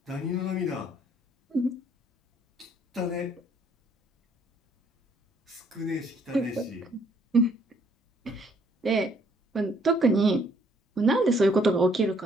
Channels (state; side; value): normal; both; correlation 0.65